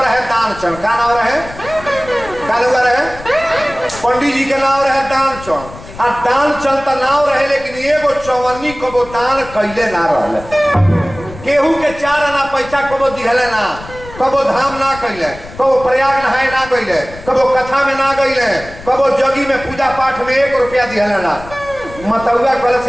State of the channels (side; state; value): left; noise; rumble, 16 dB below the sound